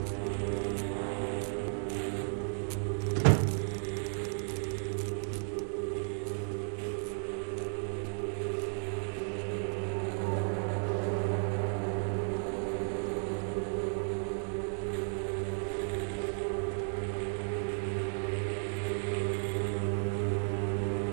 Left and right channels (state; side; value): silent; left; digital silence